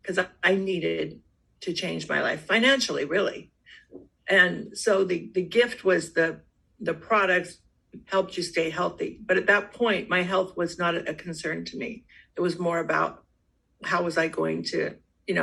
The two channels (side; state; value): both; identical; correlation 1.00